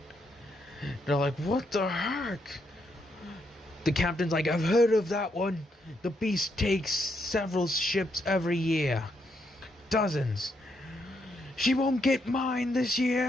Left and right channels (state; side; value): normal; both; correlation 0.78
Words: They're like, "What the heck?" The captain's like, "I've heard of that one. The beast takes several ships every year. Dozens. She won't get mine this